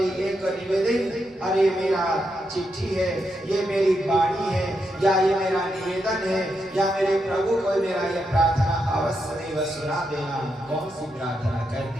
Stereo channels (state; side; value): normal; both; correlation 0.83